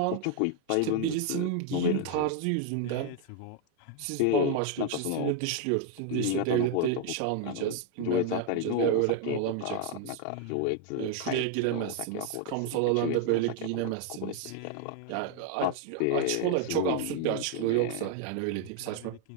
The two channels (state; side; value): different; both; correlation 0.01